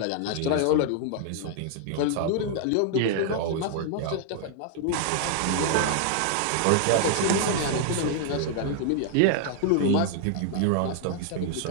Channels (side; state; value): both; different; correlation 0.00